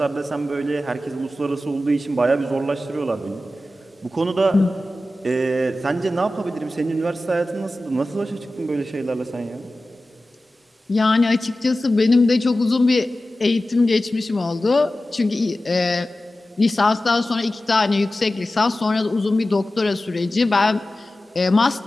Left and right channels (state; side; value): normal; both; correlation 0.95